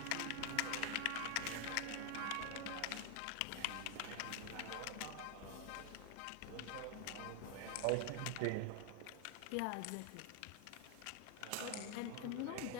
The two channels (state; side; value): different; both; correlation 0.01